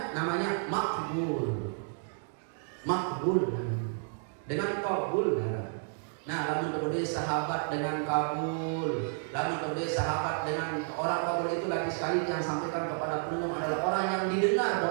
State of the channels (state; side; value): silent; left; 57 dB below the other